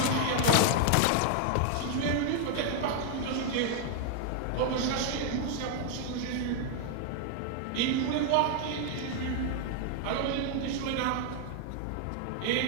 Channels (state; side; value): different; both; correlation 0.00